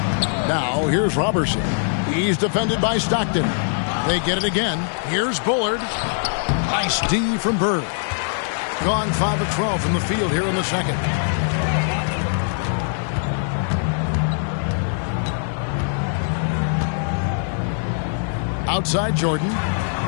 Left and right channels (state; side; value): silent; right; digital silence